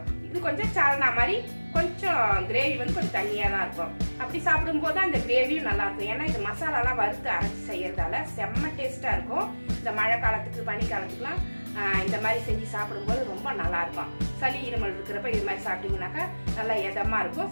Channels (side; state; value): both; inverted; correlation -1.00